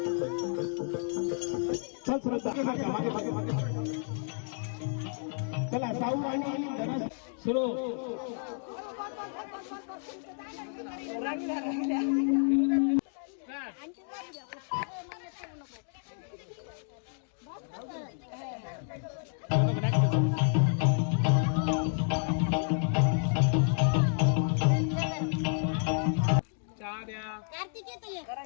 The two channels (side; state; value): right; silent; 57 dB below the other